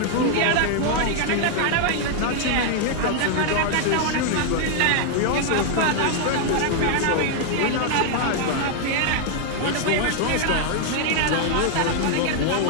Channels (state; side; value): different; both; correlation 0.00